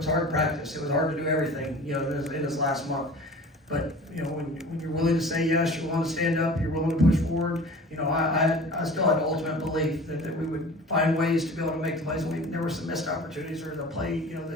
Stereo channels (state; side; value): normal; both; correlation 0.41